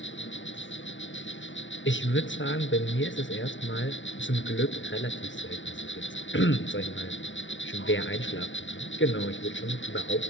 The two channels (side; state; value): right; late; 0.55 ms